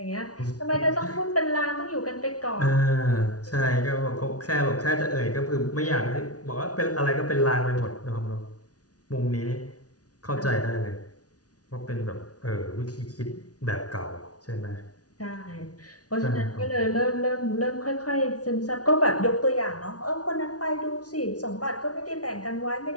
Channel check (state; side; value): late; right; 0.68 ms